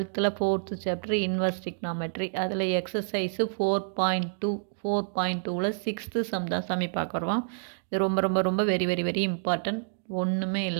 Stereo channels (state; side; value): silent; left; digital silence